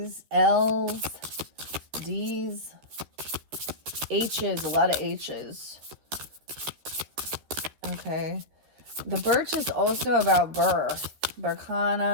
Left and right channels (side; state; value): left; late; 13 ms